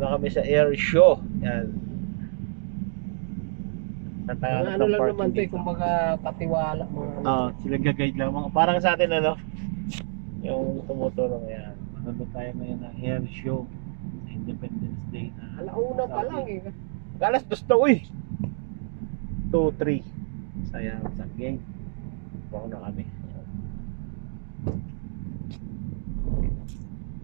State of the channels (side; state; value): left; silent; 60 dB below the other